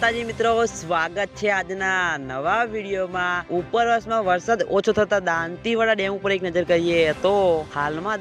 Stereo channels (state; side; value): identical; both; correlation 1.00